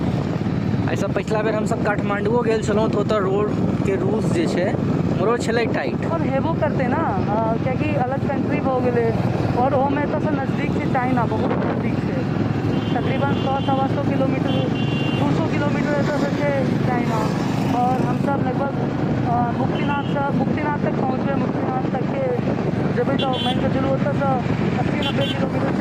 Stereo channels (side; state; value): both; identical; correlation 1.00